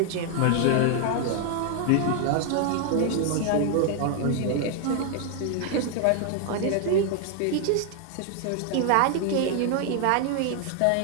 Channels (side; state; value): both; different; correlation 0.00